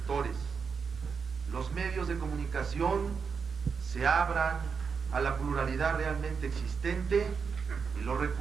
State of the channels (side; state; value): left; quieter; 5.8 dB